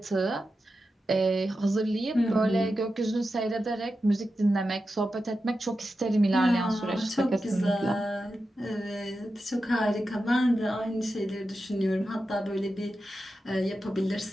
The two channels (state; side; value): normal; both; correlation 0.91